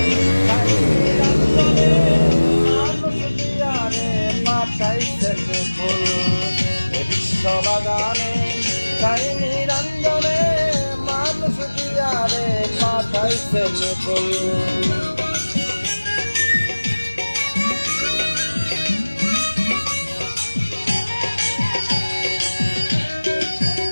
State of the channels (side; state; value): both; inverted; correlation -1.00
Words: মানুষ দিয়ারে পাঠাইছেন ফুল বিশ্ব বাগানে তাই নিরঞ্জনে মানুষ দিয়ারে পাঠাইছেন ফুল